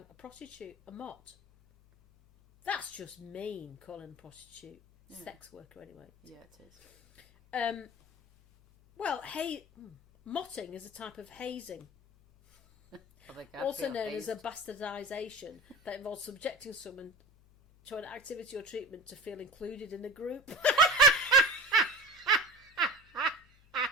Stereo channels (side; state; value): left; noise; hum, 28 dB below the sound